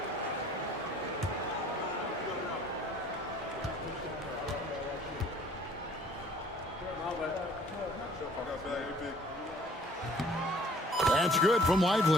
That's good from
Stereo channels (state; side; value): normal; both; correlation 0.55